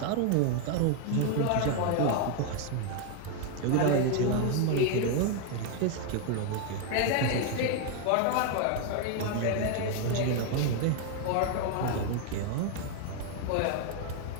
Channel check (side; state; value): both; different; correlation 0.01